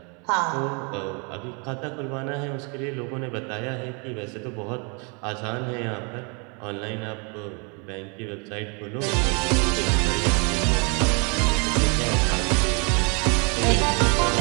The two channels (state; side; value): quieter; left; 34.1 dB